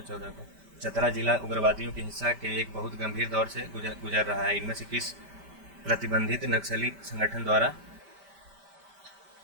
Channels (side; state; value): left; late; 5.1 ms